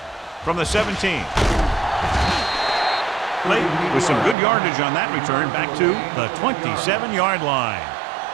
From the 17. Clayton with some good yardage on that return back to the 27-yard line.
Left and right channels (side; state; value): left; drops out; at 4.4 s